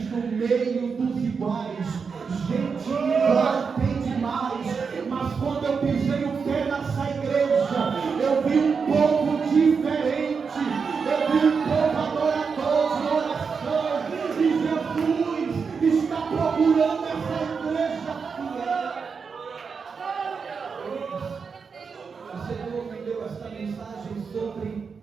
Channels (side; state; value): left; quieter; 5.5 dB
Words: no meio dos iguais. Gente igual tem demais, mas quando eu pisei o pé nessa igreja, eu vi um povo diferente, eu vi um povo adorador de oração, e Jesus está procurando essa igreja fiel. O Senhor me deu esta mensagem sobre